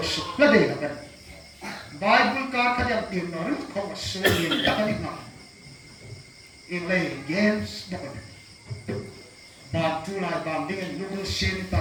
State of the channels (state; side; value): identical; both; correlation 1.00